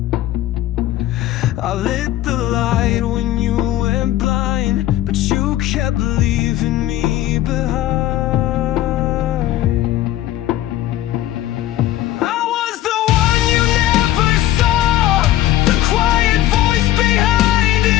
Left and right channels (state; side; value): quieter; right; 13.9 dB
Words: I lit the light when you went blind, but you kept leaving me behind. I was the one you never saw, the quiet voice behind